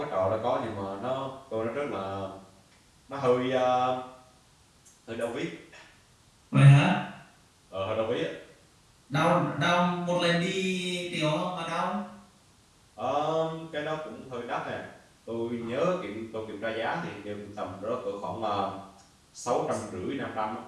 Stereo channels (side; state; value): both; identical; correlation 1.00